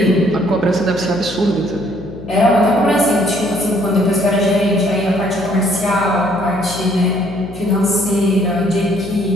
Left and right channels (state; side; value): noise; left; hum, 15 dB below the sound